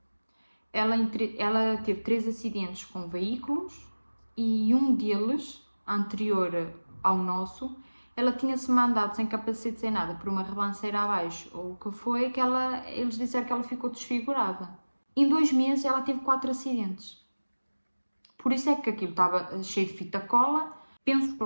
Ela teve 3 acidentes com veículos e um deles, anterior ao nosso, ela tinha-se mandado sem capacete, sem nada, por uma ribanceira abaixo, ou o que foi, que eles disseram que ela ficou desfigurada. Em 2 meses ela teve 4 acidentes. Por isso é que aquilo estava cheio de fita cola, pensos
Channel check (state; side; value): inverted; both; correlation -1.00